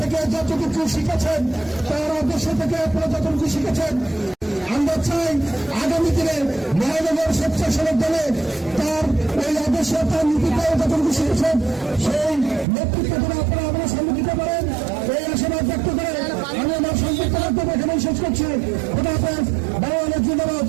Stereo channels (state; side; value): drops out; left; at 12.7 s